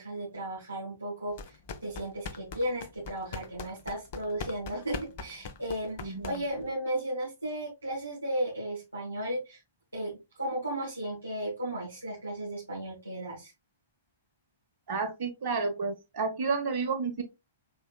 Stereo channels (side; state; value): both; inverted; correlation -0.57